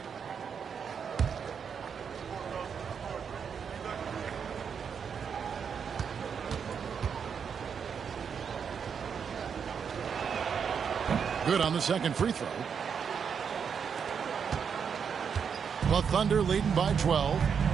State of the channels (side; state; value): left; quieter; 6.8 dB